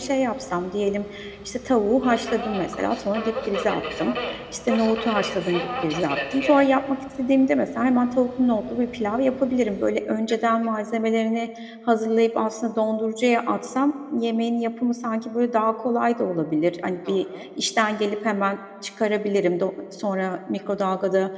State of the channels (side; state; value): both; identical; correlation 1.00